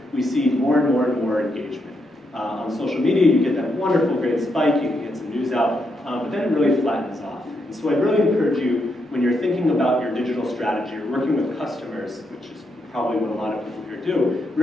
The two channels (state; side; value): normal; both; correlation 0.80